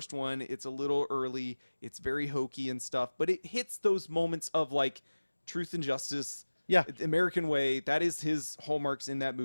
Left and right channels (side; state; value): both; inverted; correlation -1.00